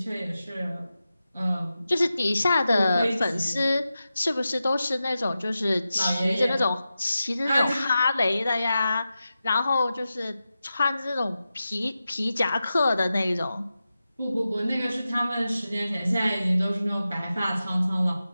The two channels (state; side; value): inverted; both; correlation -0.92